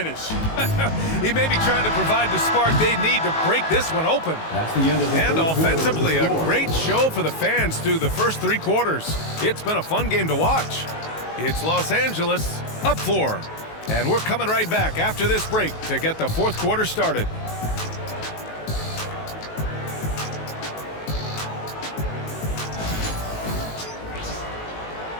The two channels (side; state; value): right; late; 19 ms